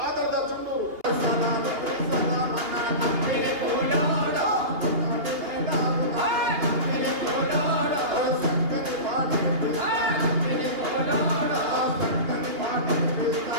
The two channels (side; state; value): left; late; 2.8 ms